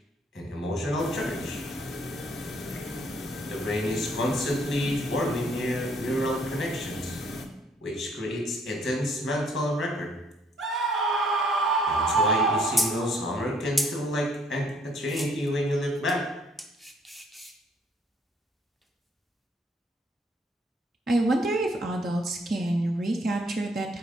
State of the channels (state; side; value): normal; both; correlation 0.65